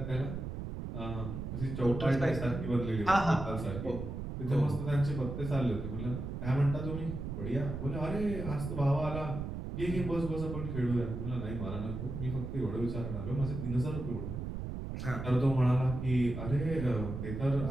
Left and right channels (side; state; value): right; noise; rumble, 5 dB below the sound